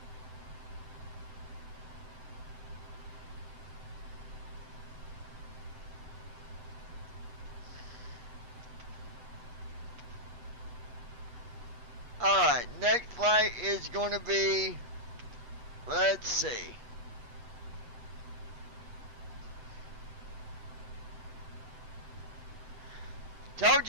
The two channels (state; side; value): late; left; 8.3 ms